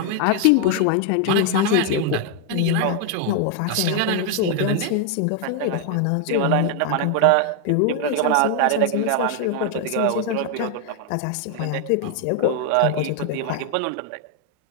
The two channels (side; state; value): both; different; correlation 0.00